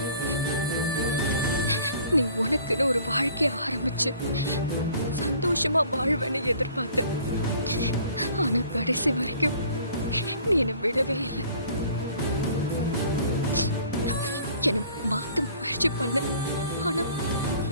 நீ உனக்குன்னு ஒரு வாழ்க்கைய ஆரம்பிச்சு சந்தோஷமா வாழ்வேன்னு எதிர்பார்த்த. ஆனா கடைசி வரைக்கும் நீ என்னை விடவே இல்லை. என்னை மாத்த முயற்சி பண்ண, ஆனா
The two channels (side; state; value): both; inverted; correlation -0.53